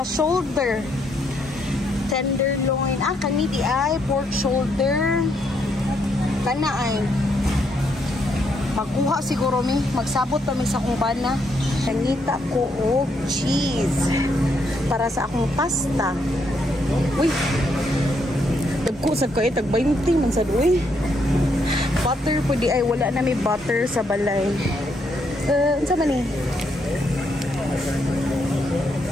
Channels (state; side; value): normal; both; correlation 0.75